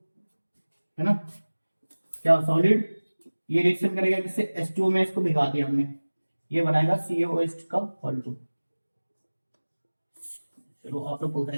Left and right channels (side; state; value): both; inverted; correlation -1.00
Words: है ना, क्या सॉलिड, ये रिएक्शन करेगा किससे? H2O में इसको भिगा दिया हमने, ये बनाएगा CaOH का Hol2। चलो आप लोग बोलते